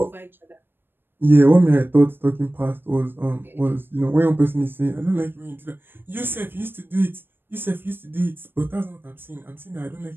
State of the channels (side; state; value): left; late; 0.098 ms